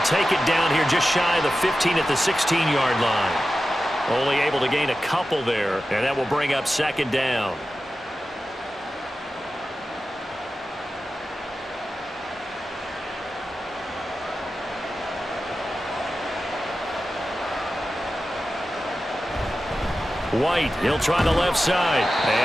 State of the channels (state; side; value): normal; both; correlation 0.93